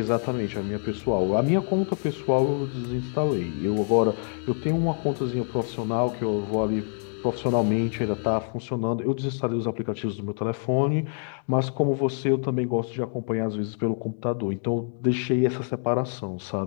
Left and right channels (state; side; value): silent; right; 61 dB below the other